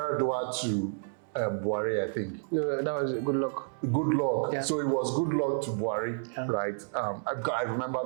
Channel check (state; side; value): silent; left; digital silence